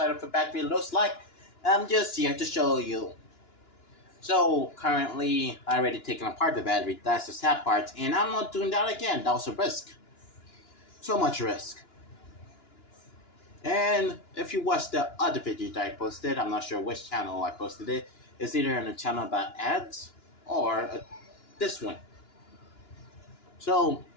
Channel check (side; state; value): right; late; 2.9 ms